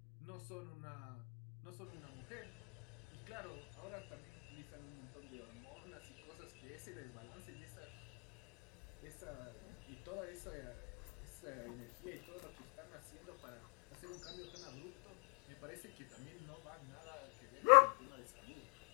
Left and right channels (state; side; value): quieter; right; 34.1 dB